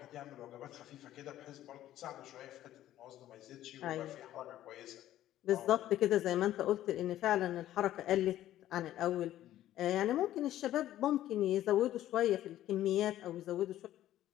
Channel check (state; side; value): quieter; right; 13.2 dB